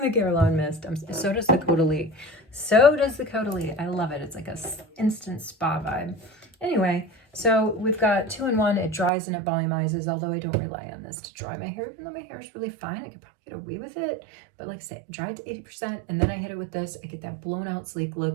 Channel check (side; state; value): left; drops out; at 9.1 s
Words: mist. So does the Caudalie. I love it. It's like a instant spa vibe. Anyway, so we've got 2-in-1. It dries and it volumizes, although I don't rely on this to dry my hair, even though my hair is really fine. I could probably get away with it. But like I say, dry it to 80%, and then I hit it with this. I get that blown out sleek